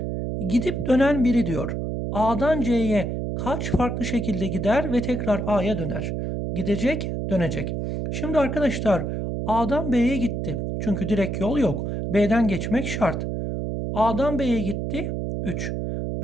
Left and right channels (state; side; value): noise; right; hum, 2 dB below the sound